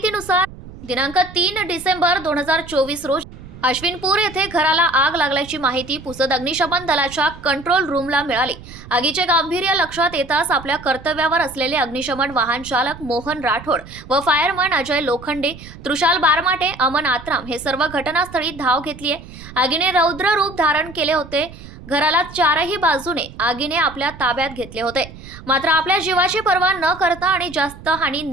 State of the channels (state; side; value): noise; right; rumble, 16 dB below the sound